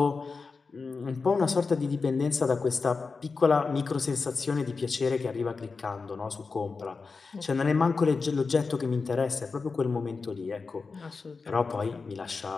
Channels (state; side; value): quieter; right; 4.5 dB